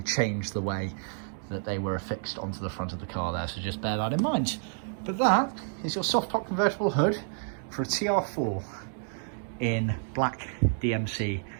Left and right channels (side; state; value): left; silent; digital silence